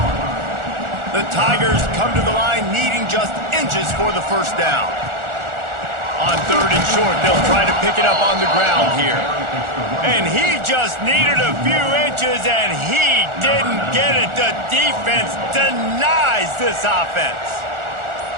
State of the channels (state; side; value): late; left; 1.4 ms